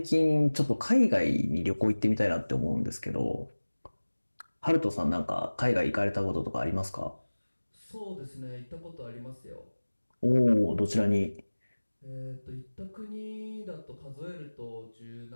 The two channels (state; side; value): inverted; both; correlation -1.00